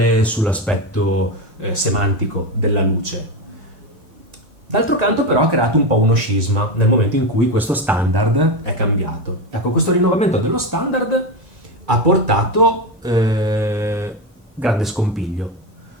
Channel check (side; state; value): both; normal; correlation 0.15